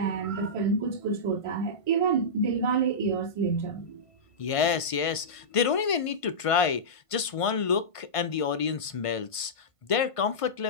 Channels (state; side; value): late; right; 1.5 ms